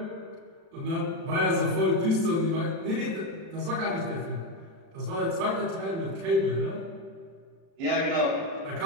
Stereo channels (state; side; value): late; left; 36 ms